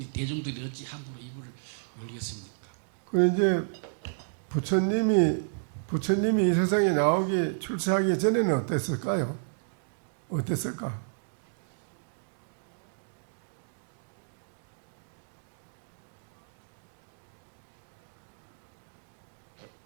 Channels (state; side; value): silent; left; digital silence